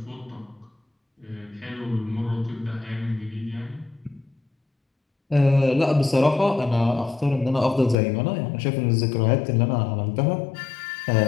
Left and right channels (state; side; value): drops out; right; at 8.0 s